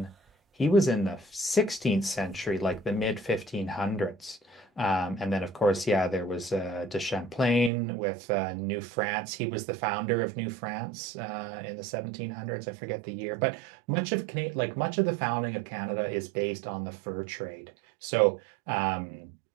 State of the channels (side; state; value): left; drops out; at 7.7 s